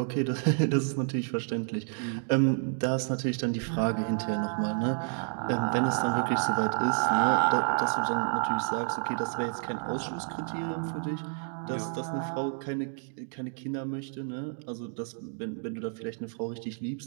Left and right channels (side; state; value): left; silent; 58 dB below the other